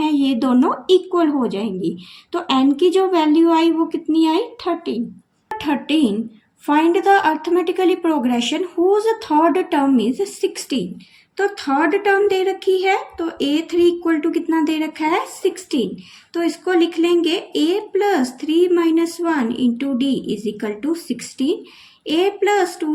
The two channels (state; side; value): identical; both; correlation 1.00